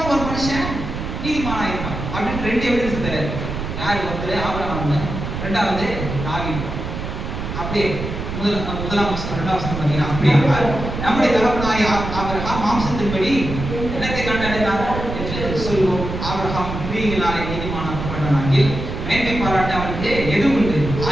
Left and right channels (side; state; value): right; noise; rumble, 6 dB below the sound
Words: ஒரு மனுஷன் நீதிமானாகிட்டான் அப்படின்னு 2 எவிடன்ஸ் தராரு. யாரு? ஒருத்தர் ஆபிரகாம், 2வது தாவீது. அப்படியே முதலாம் வசனம் 2ஆம் வசனம் பார்த்தீங்கன்னா அப்படியே நம்முடைய தகப்பனாகிய ஆபிரகாம் மாம்சத்தின்படி என்னத்தை கண்டடைந்தார் என்று சொல்வோம். ஆபிரகாம் கிரியைகளாலே நீதிமானாக்கப்பட்டானாகில் மேன்மை பாராட்ட அவனுக்கு எது உண்டு?